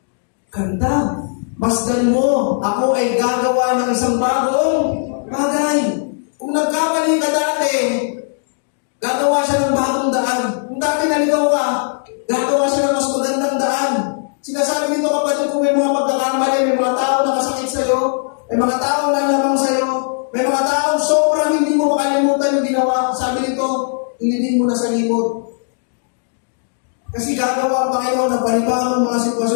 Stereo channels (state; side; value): silent; right; digital silence